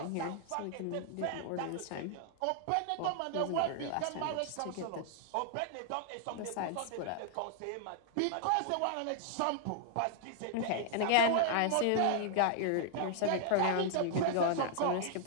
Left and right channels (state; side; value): different; both; correlation -0.01